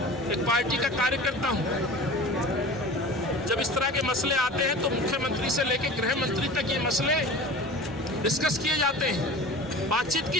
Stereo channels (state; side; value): normal; both; correlation 0.37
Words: एक पार्टी का कार्यकर्ता हूं। जब इस तरह के मसले आते हैं तो मुख्यमंत्री से लेकर गृह मंत्री तक ये मसले डिस्कस किए जाते हैं, बातचीत की